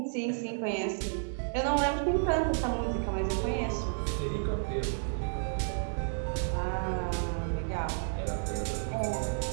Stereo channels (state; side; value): silent; left; digital silence